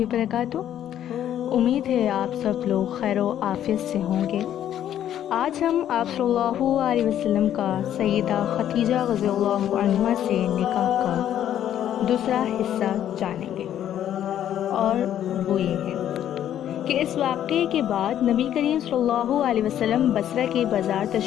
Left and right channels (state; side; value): quieter; right; 10.9 dB